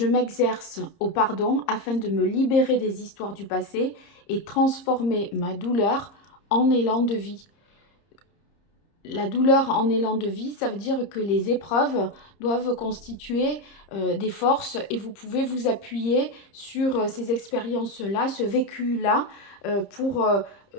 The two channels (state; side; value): late; right; 30 ms